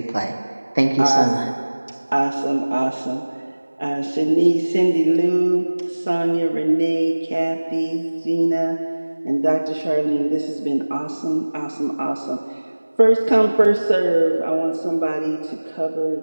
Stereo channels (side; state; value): both; inverted; correlation -1.00